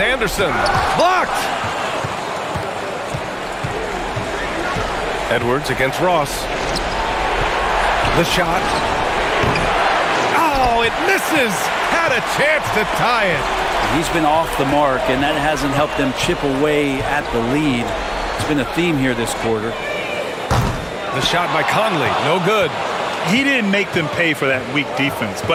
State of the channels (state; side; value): identical; both; correlation 1.00